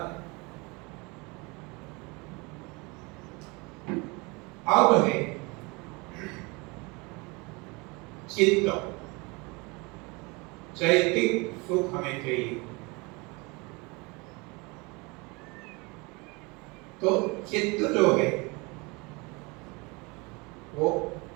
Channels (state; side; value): quieter; left; 27.0 dB